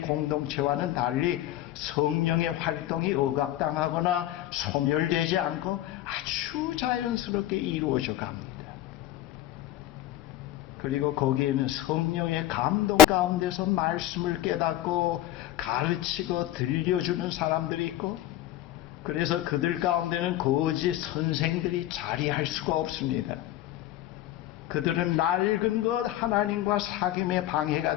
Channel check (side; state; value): right; quieter; 13.5 dB